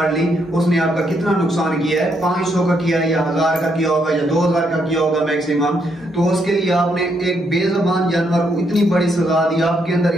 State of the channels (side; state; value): both; normal; correlation 0.75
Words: لی، اس نے آپ کا کتنا نقصان کیا ہے؟ 500 کا کیا ہے یا 1000 کا کیا ہوگا یا 2000 کا کیا ہوگا میکسیمم. تو اس کے لیے آپ نے ایک بے زبان جانور کو اتنی بڑی سزا دی. آپ کے اندر